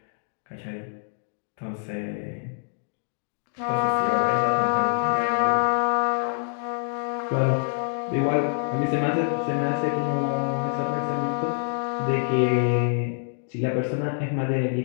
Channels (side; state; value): right; silent; digital silence